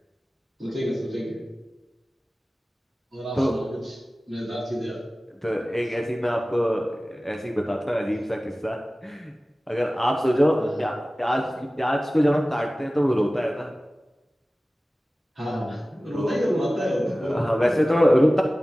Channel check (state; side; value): normal; both; correlation 0.97